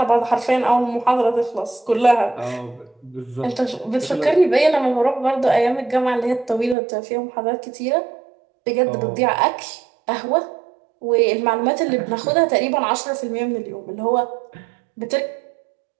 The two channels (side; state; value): left; drops out; at 6.8 s